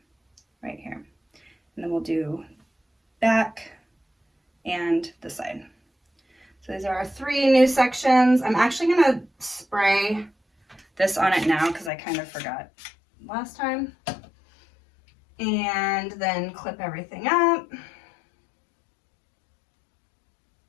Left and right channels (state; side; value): drops out; right; at 11.9 s